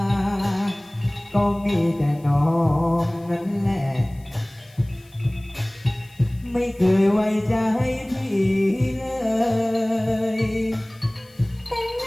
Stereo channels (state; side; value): noise; left; hiss, 29 dB below the sound